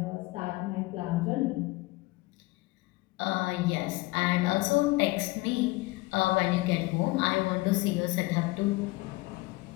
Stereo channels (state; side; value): quieter; right; 21.9 dB